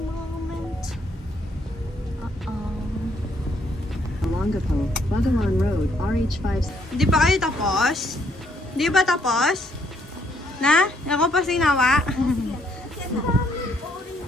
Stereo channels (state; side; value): normal; both; correlation 0.69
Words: Longapo, Bagalan Road, RH5. Hindi pa kayo tapos? Di ba tapos? Na? Ako pa sinawa?